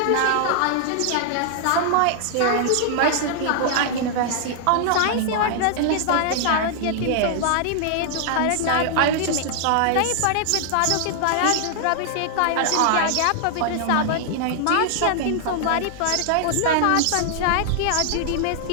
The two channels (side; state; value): both; different; correlation -0.01